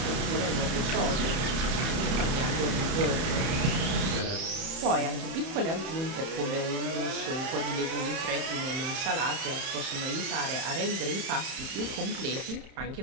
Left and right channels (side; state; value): left; late; 31 ms